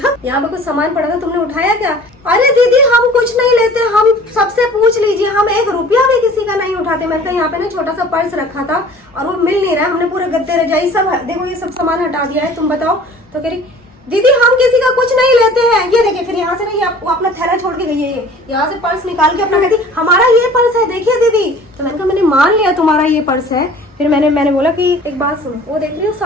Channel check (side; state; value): both; normal; correlation 0.47